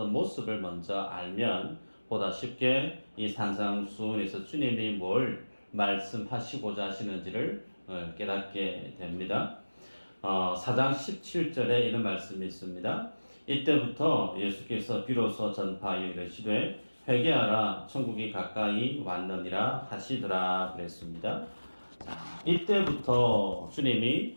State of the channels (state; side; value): inverted; both; correlation -1.00